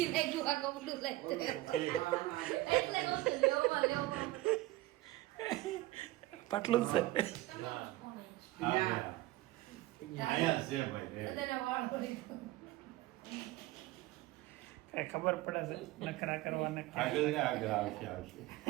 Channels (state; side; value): quieter; left; 18.0 dB